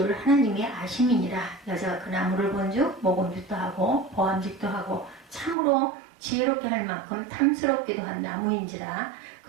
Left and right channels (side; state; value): left; drops out; at 5.6 s